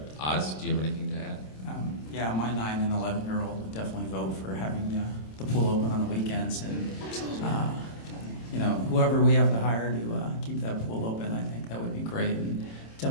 Oz, do you have anything to add? Yeah, my 9 and 11-year-old would definitely vote for having the pool open on the weekends, and whoever we have to hire to keep that pool open, I think that would be great, and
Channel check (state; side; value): late; right; 27 ms